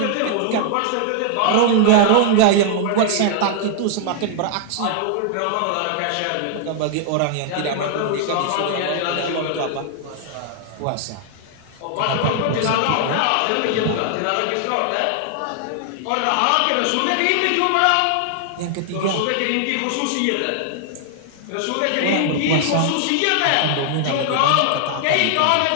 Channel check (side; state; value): both; different; correlation 0.00